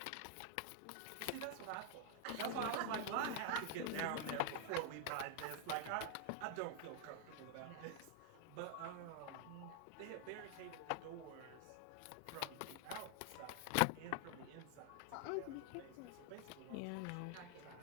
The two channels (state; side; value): different; both; correlation 0.00